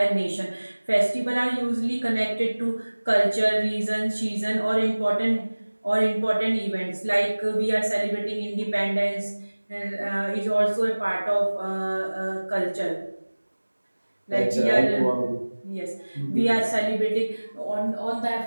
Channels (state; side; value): inverted; both; correlation -1.00